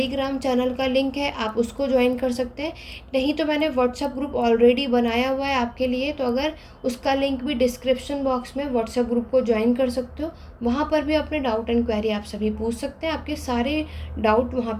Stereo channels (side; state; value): both; identical; correlation 1.00